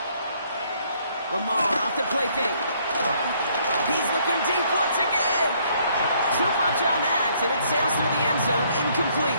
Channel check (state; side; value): inverted; both; correlation -0.66